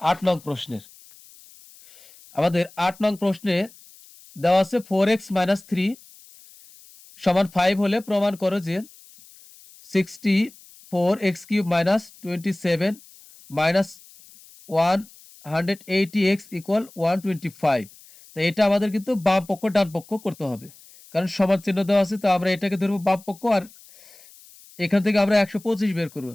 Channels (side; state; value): left; noise; hiss, 24 dB below the sound